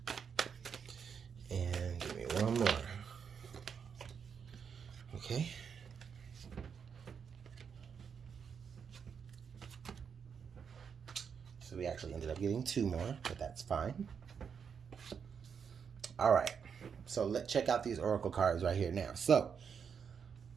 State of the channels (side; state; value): left; quieter; 6.8 dB